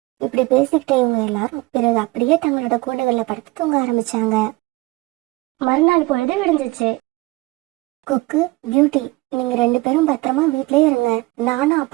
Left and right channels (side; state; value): left; quieter; 21.6 dB